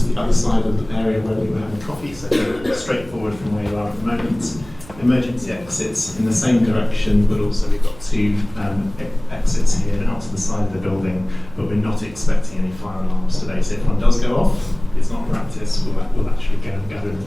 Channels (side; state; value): right; noise; hum, 20 dB below the sound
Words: the other side of the area where we were having coffee, so straightforward from where you are at the moment. Emergency exits in the same direction, but also we've got two exits here out to the side of the building, but we're not expecting any fire alarms today, so if one does go off, it's not practice, we'll actually go and gather in the